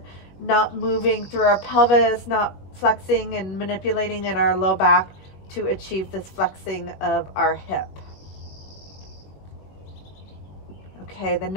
not moving through our pelvis, not flexing and manipulating in our low back to achieve this flexing of our hip. Okay, the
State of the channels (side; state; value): right; late; 21 ms